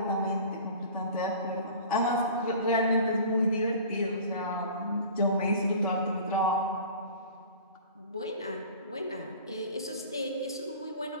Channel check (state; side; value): inverted; both; correlation -0.42